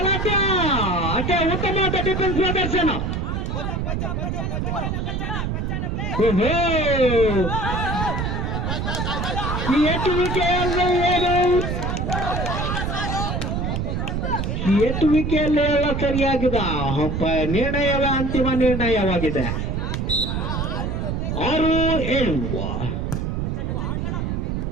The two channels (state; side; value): noise; right; rumble, 1 dB below the sound